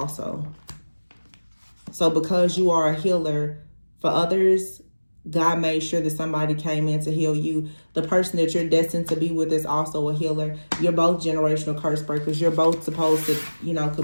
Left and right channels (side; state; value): both; inverted; correlation -1.00